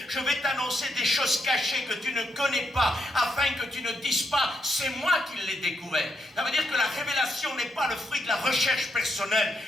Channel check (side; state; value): both; normal; correlation 0.79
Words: Je vais t'annoncer des choses cachées que tu ne connais pas, afin que tu ne dises pas, c'est moi qui l'ai découvert. Ça veut dire que la révélation n'est pas le fruit de la recherche personnelle.